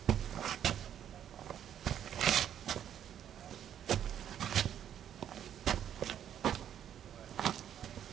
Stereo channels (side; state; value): left; quieter; 9.9 dB